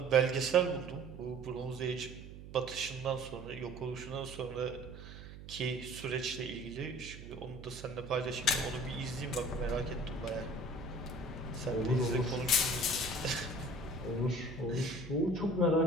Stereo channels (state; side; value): noise; right; hum, 13 dB below the sound